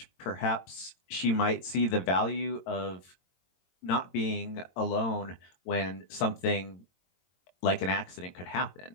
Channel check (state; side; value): late; right; 22 ms